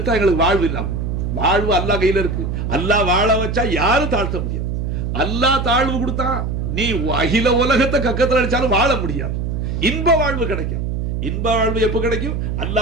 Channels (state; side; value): noise; right; hum, 2 dB below the sound